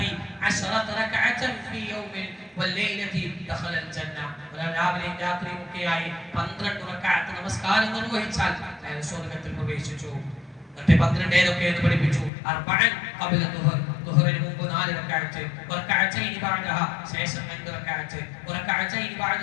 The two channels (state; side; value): drops out; right; at 12.3 s